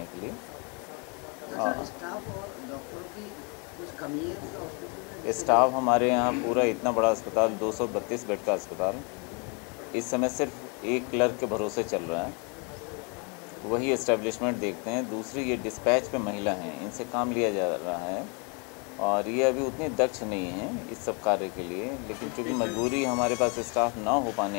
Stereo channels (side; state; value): right; quieter; 33.9 dB